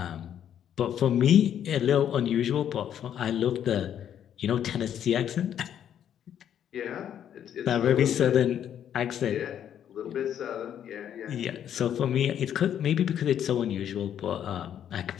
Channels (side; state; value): right; quieter; 9.7 dB